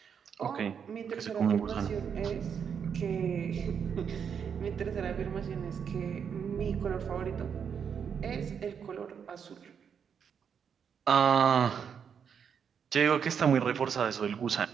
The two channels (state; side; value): quieter; left; 7.3 dB